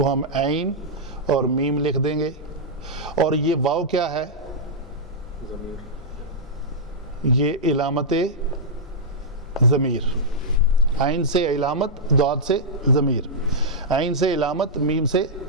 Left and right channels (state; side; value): noise; left; hum, 23 dB below the sound